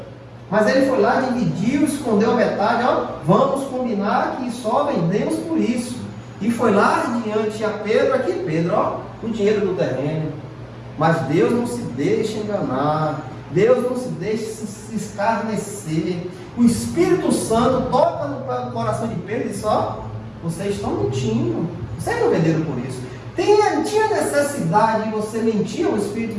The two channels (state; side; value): identical; both; correlation 1.00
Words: Mas ele foi lá, dividiu, escondeu a metade. Ó, vamos combinar que só vendemos por isso. E foi lá diante a Pedro, aqui Pedro, ó, o dinheiro do terreno. Mas Deus não se deixa enganar. Deus não se deixa se escarnecer. O Espírito Santo toca no coração de Pedro e diz, ó, vocês estão mentindo. Vocês não venderam por isso. Tinha necessidade de você mentir ao